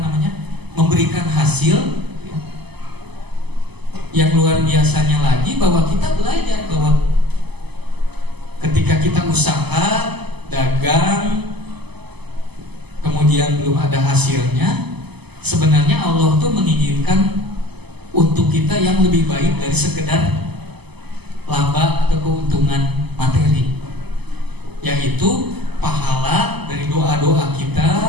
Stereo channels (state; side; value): late; left; 0.99 ms